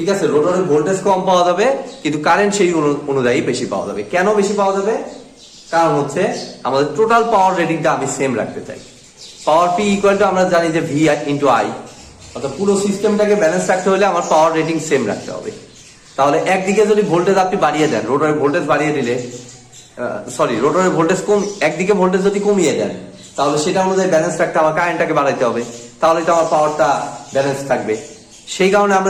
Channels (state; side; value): identical; both; correlation 1.00